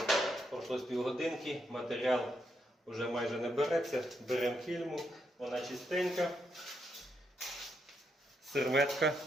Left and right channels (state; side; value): normal; both; correlation 0.80